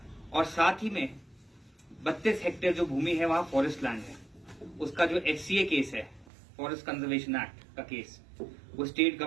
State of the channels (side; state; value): left; drops out; at 6.3 s